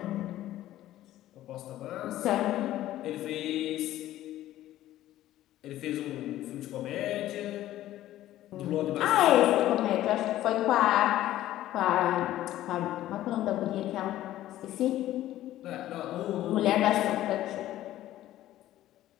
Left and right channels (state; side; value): quieter; right; 14.0 dB